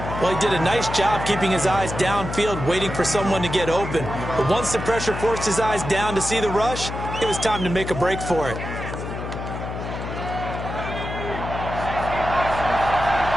Well, he did a nice job keeping his eyes downfield, waiting for someone to get open. But once the pressure forced his eyes down to see the rush, it was time to make a break for it.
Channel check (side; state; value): left; noise; hum, 7 dB below the sound